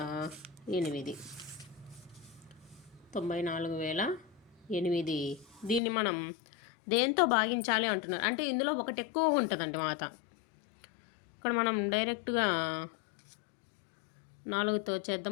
దీన్ని మనం దేంతో భాగించాలి అంటున్నారు అంటే ఇందులో ఒకటి ఎక్కువ ఉంటుందండి మాట. ఇక్కడ మనం డైరెక్ట్గా 4తో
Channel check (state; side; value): drops out; right; at 5.8 s